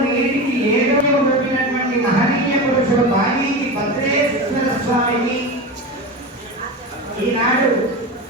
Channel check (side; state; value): both; normal; correlation 0.24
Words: నేటికి ఏదో పెట్టినటువంటి మహనీయ పురుషుడు బాలీకి భద్రేశ్వర స్వామిని ఈనాడు